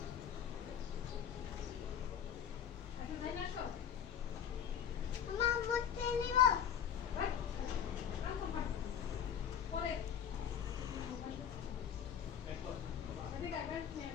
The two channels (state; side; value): quieter; right; 8.6 dB